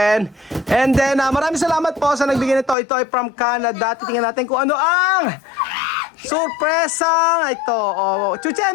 And then maraming salamat po sa nagbigay nito. Ito ay from Canada. Titingnan natin kung ano ang surpresa ito. Oh,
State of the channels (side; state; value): right; drops out; at 2.8 s